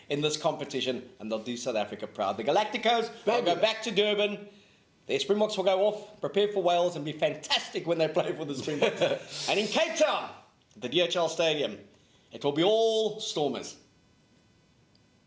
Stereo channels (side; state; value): both; identical; correlation 1.00